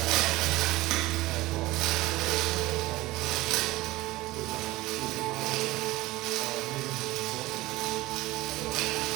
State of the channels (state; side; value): quieter; left; 18.8 dB